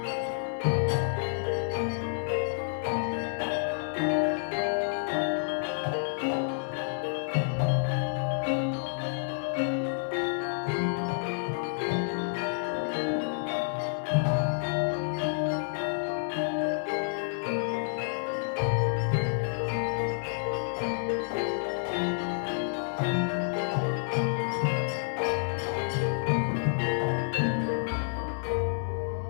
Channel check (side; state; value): right; silent; 58 dB below the other